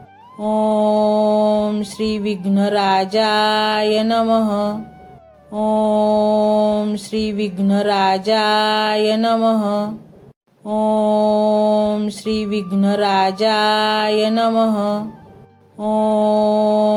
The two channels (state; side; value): identical; both; correlation 1.00